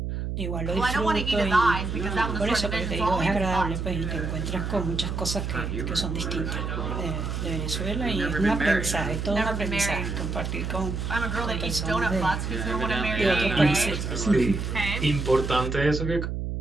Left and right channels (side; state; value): right; noise; hum, 3 dB below the sound